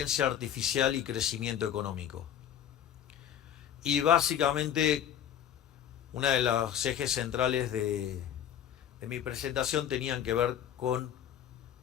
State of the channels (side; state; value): right; quieter; 9.9 dB